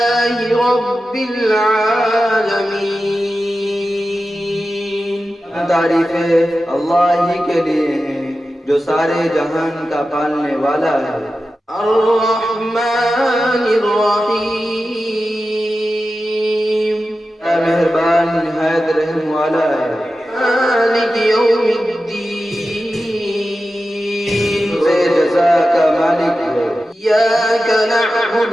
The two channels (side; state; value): both; normal; correlation 0.93